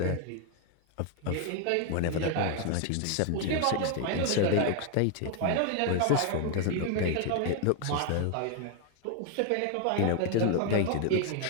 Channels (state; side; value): different; both; correlation 0.00